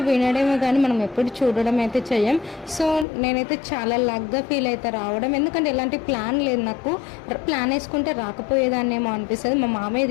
వినడమే కానీ మనం ఎప్పుడు చూడడం అయితే చెయ్యం. సో నేనైతే చాలా లక్గా ఫీల్ అయితే రావడం, ఎందుకంటే ఎలాంటి ప్లాన్ లేదు నాకు. ప్లాన్ వేసుకుంటే రాకపోయేదాన్నేమో అనిపిస్తుంది. మా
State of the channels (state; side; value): drops out; right; at 3.1 s